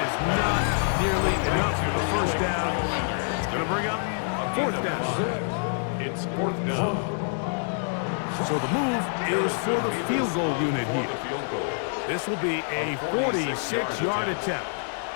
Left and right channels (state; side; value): silent; right; 61 dB below the other